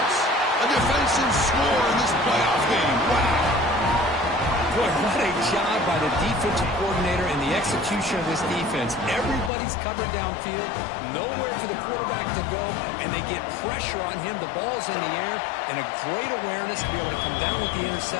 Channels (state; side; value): drops out; right; at 9.5 s